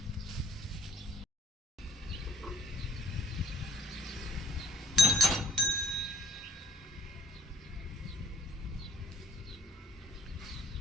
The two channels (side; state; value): both; normal; correlation 0.58